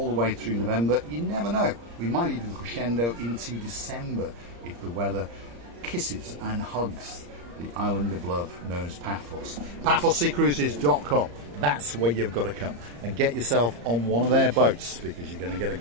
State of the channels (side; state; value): left; late; 34 ms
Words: the way through November. You never know. We might even crescendo into December if the weather kisses and hugs the island of love known as Paphos. PaphosSeaCruises.com. That's where you've got to come and get yourself on one of their boats, because you're going to get a